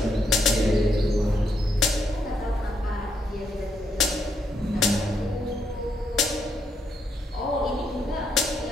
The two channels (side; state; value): both; normal; correlation 0.76